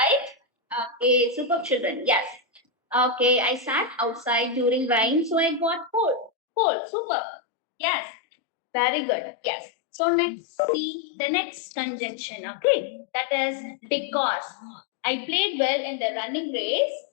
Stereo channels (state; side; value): drops out; right; at 6.3 s